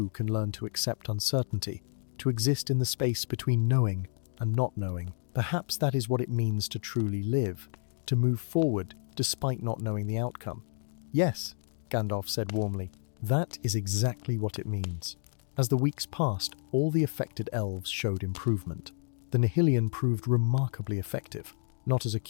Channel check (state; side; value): silent; right; digital silence